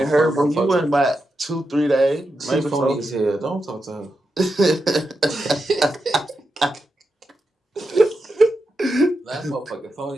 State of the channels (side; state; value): both; normal; correlation 0.87